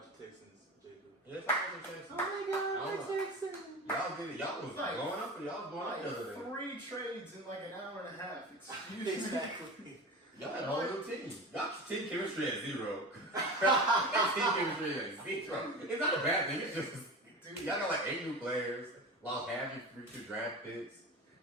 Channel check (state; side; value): normal; both; correlation 0.30